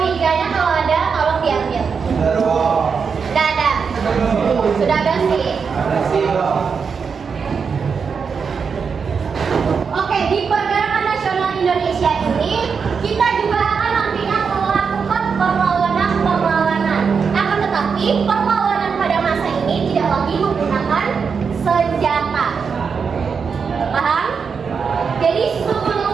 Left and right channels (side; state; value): left; quieter; 5.9 dB